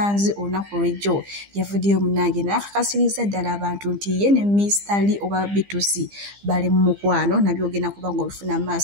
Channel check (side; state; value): left; late; 15 ms